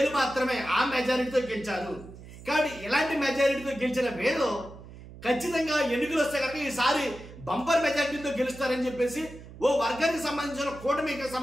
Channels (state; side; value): noise; right; hum, 16 dB below the sound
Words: మాత్రమే ఆ మెజారిటీతో గెలిచారు. కాబట్టి ఇలాంటి మెజారిటీతో గెలిచిన వేలు ఖచ్చితంగా ఎన్నికలు వస్తే కనుక ఈసారి బంపర్ మెజారిటీతో గెలుస్తారని చెప్పేసి ఓ వర్గానికి సంబంధించిన కూటమికి